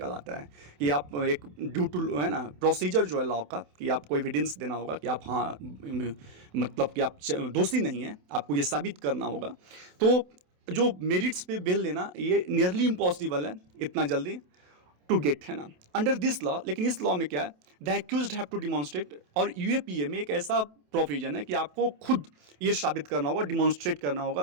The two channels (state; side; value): late; left; 28 ms